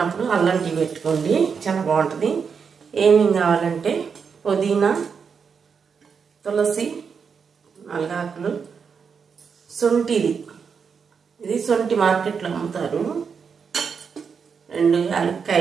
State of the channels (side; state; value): left; quieter; 6.1 dB